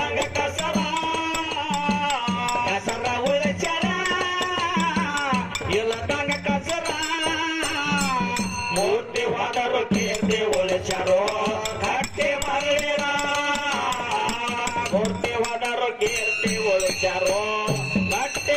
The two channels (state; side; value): identical; both; correlation 1.00